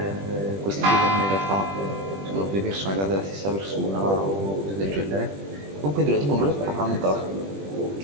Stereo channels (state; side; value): late; left; 20 ms